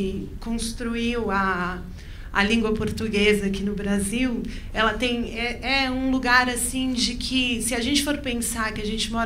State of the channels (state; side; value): identical; both; correlation 1.00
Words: construiu a língua portuguesa aqui no Brasil, ela tem um lugar assim de que, se a gente for pensar que a gente